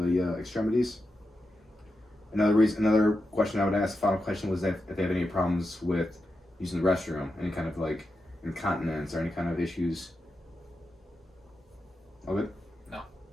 extremities. Another question I would ask, final question, was if they have any problems with using the restroom, any kind of like incontinence or any kind of issues. All good? No.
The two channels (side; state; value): both; normal; correlation 0.88